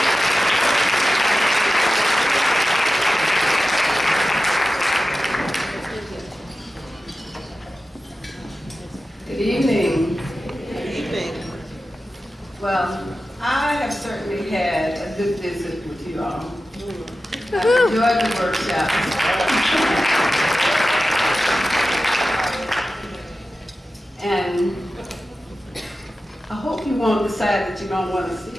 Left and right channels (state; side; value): normal; both; correlation 0.94